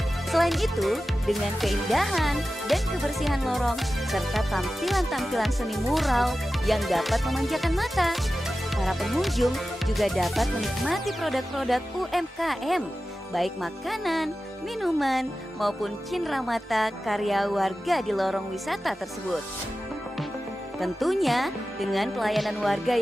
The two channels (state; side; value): normal; both; correlation 0.94